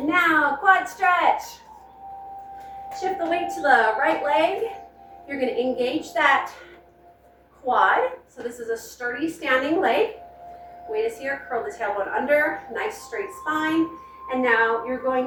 now, quad stretch. Shift the weight to the right leg. You're going to engage that quad. So this is a sturdy standing leg. Weight is here, curl the tailbone under, nice straight spine. And now you're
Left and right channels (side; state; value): both; identical; correlation 1.00